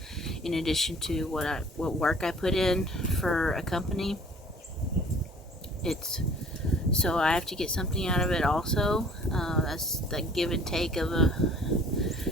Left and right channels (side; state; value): both; normal; correlation 0.52